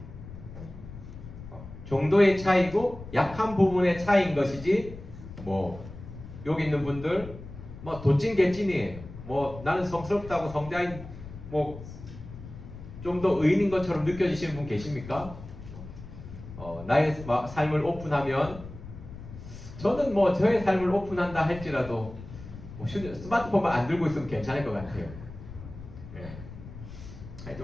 정도의 차이고 약한 부분의 차이인 것이지 뭐 여기 있는 분들 뭐 도찐 개찐이에요. 뭐 나는 성스럽다고 성자인 뭐 좀 더 의인인 것처럼 느껴지시는 분 계십니까? 나의 삶을 오픈하면 저는 뭐 저의 삶을 오픈한다 할지라도 뭐 스마트폰만 안 들고 있으면 괜찮을 것 같아요. 예.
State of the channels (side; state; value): left; noise; rumble, 14 dB below the sound